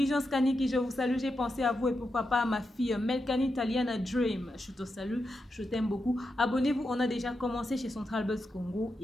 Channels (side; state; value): both; normal; correlation 0.87